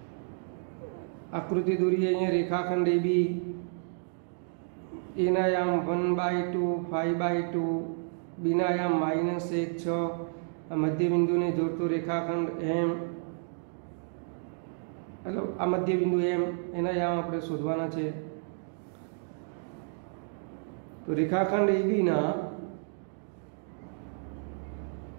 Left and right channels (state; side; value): silent; left; digital silence